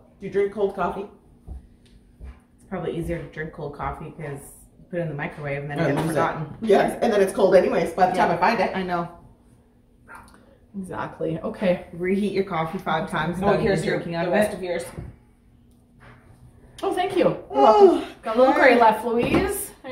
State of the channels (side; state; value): both; identical; correlation 1.00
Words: Do you drink cold coffee? It's probably easier to drink cold coffee because you put it in the microwave and then I it gets lose it. forgotten. Yes, and then it's cold anyways by the time I find it. I know. Exactly. Okay. Reheat your coffee 5 times. Oh, without here's even your, drinking the out of rest it. of yours. Oh, thank you. Oh, Got a little gray left, Louise.